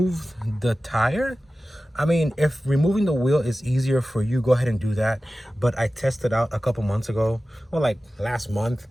the tire. I mean, if removing the wheel is easier for you, go ahead and do that. But I tested out a couple months ago, or like last month,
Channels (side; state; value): both; normal; correlation 0.95